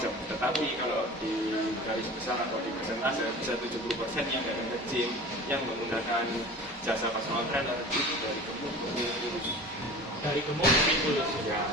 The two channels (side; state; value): both; normal; correlation 0.38